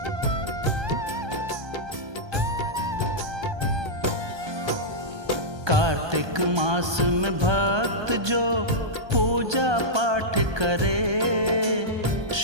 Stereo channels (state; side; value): late; left; 1.2 ms